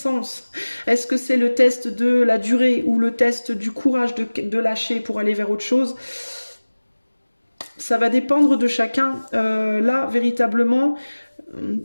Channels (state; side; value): inverted; both; correlation -1.00